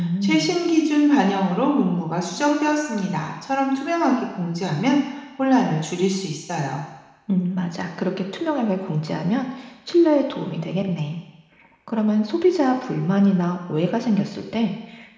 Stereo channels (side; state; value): both; identical; correlation 1.00